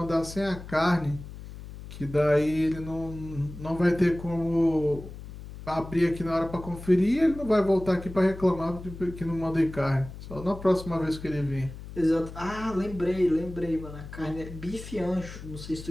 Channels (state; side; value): noise; left; hum, 13 dB below the sound